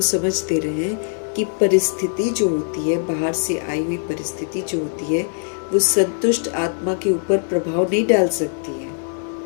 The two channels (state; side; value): silent; right; digital silence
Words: समझ दे रहे हैं कि परिस्थिति जो होती है, बाहर से आई हुई परिस्थिति जो होती है, वो संतुष्ट आत्मा के ऊपर प्रभाव नहीं डाल सकती है।